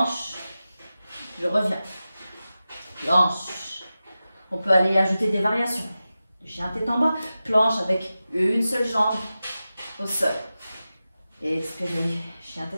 Je reviens. Planche. On peut aller ajouter des variations. Chien tête en bas. Planche avec une seule jambe au sol. Expirez. Chien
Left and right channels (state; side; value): inverted; both; correlation -0.94